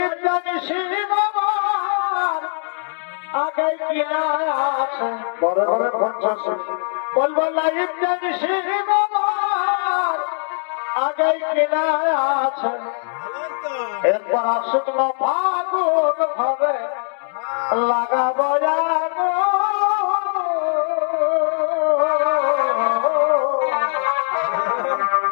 জানিস আমার আগে কি আছে বড় বড় 50 বলবো লাইফ জানিস আমার আগে কি আছে। একবার শুকনো ফাগুন ভাবে লাগাবো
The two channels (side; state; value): right; silent; digital silence